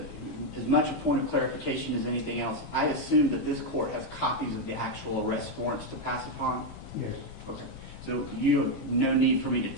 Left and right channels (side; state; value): right; late; 18 ms